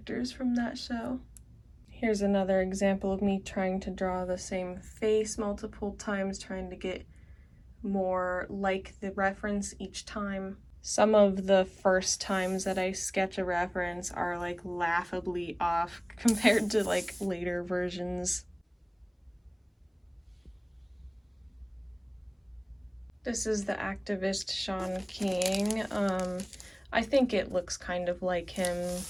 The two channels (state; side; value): identical; both; correlation 1.00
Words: from that show. Here's another example of me trying to draw the same face multiple times, trying to get more like the reference each time. Some of the first times that I sketch a reference are like laughably off compared to like later versions. This is the activist Sean King. I think it looks kind of like him,